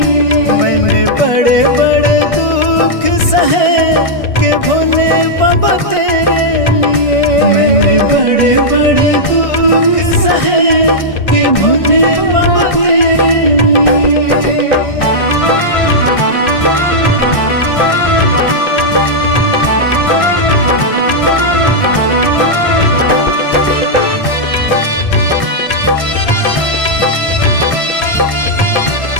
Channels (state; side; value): late; right; 1.6 ms